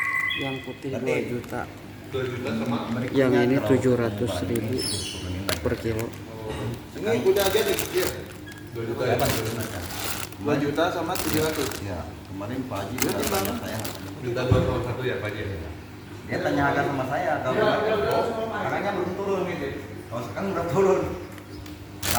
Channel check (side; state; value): both; identical; correlation 1.00